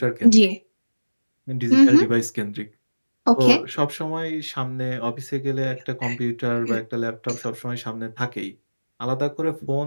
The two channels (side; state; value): both; inverted; correlation -1.00